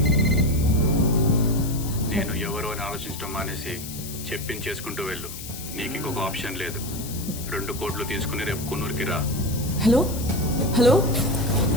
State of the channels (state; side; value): noise; left; hiss, 11 dB below the sound